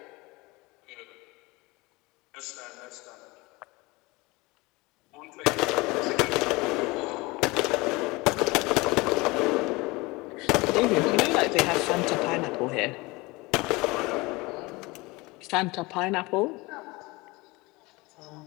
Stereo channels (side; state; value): right; quieter; 23.5 dB